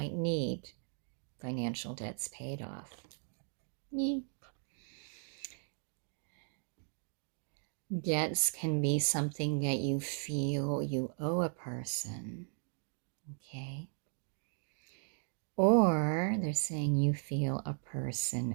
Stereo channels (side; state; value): left; silent; 53 dB below the other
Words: need financial debts paid off. Me. Debts can be something that you feel you owe a person, okay? Or they're saying you feel a